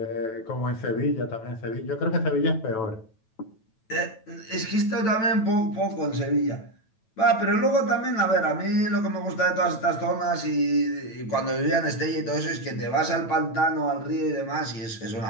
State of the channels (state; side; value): late; right; 9.1 ms